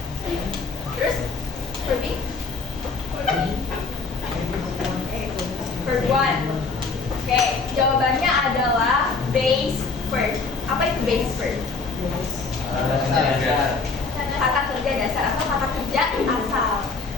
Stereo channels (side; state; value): right; quieter; 4.4 dB